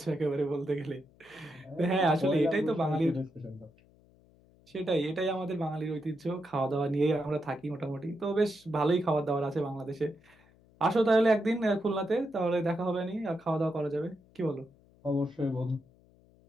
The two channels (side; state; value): left; noise; hum, 29 dB below the sound